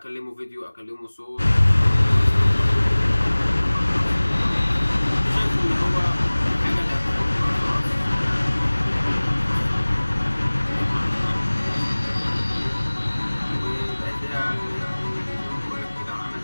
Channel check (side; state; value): both; inverted; correlation -1.00